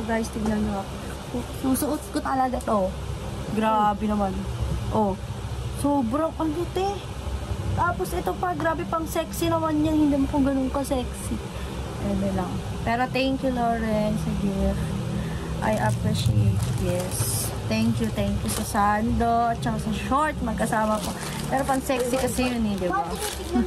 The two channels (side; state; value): both; identical; correlation 1.00